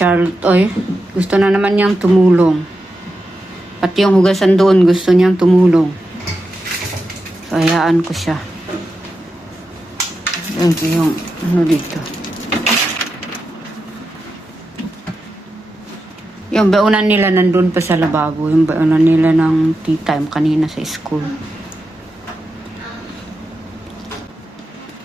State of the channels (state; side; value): normal; both; correlation 0.89